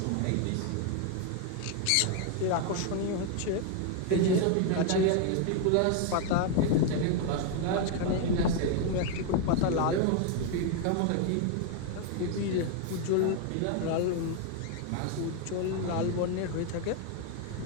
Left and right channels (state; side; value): different; both; correlation 0.00